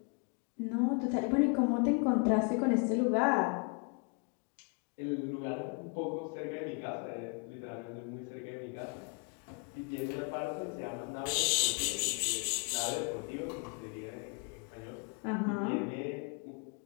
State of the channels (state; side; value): quieter; right; 35.7 dB